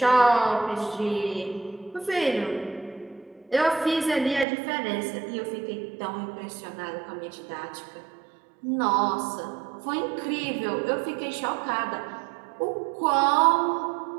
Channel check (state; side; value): drops out; left; at 4.5 s